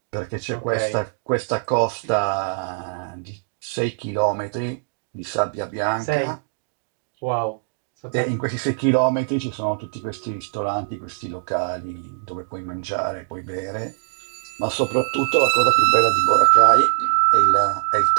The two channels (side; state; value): left; silent; digital silence